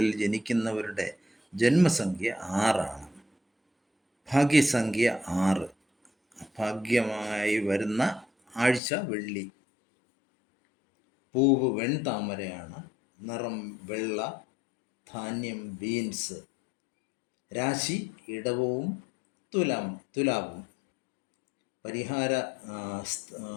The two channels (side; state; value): right; drops out; at 8.8 s